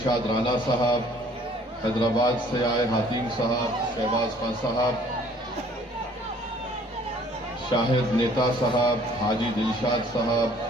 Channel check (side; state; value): both; normal; correlation 0.57